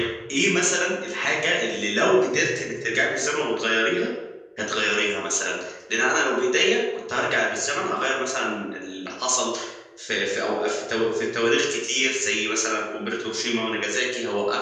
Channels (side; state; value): both; identical; correlation 1.00